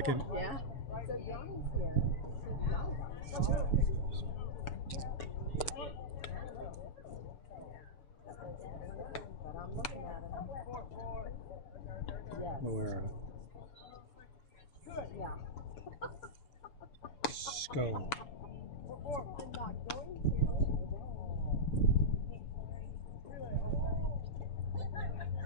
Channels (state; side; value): late; right; 6.9 ms